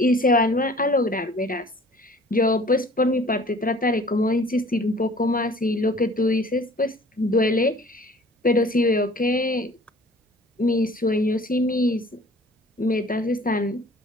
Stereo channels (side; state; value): both; normal; correlation 0.50